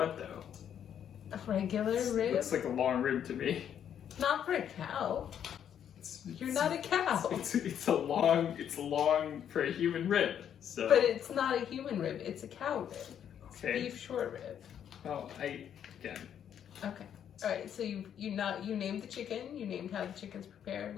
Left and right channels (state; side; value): quieter; right; 9.2 dB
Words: though? A regular rib? Looks like a long rib to me. Not for a cow. You're not a cow. It's a long for a human rib. So. But it's not a human rib. It's a cow rib. It's Okay. beef short rib. Oh, again. Okay. All right. So you named the chicken. You named how the chicken's prepared.